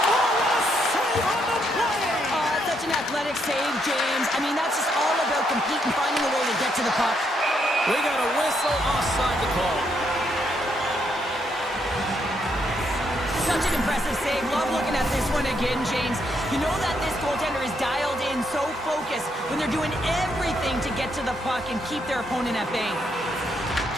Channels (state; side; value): normal; both; correlation 0.76